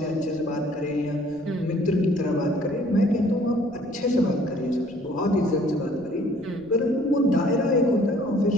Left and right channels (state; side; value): noise; left; rumble, 28 dB below the sound